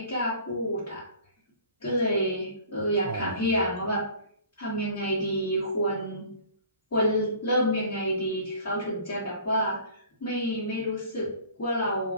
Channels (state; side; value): inverted; both; correlation -0.47